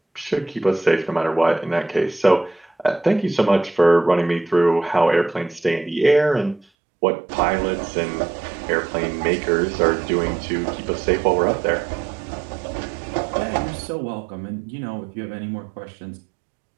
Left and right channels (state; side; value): drops out; left; at 6.7 s